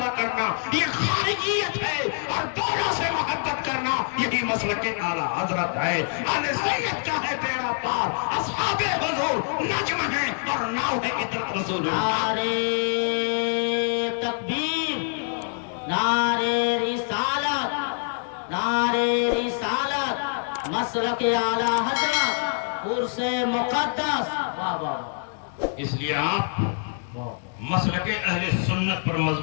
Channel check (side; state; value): right; silent; 58 dB below the other